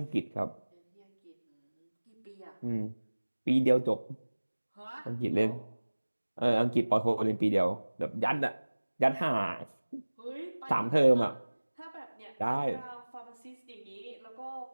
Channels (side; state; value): both; inverted; correlation -1.00